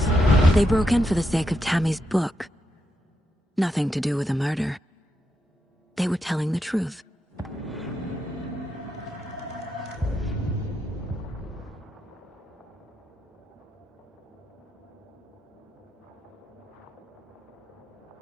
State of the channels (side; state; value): both; normal; correlation 0.82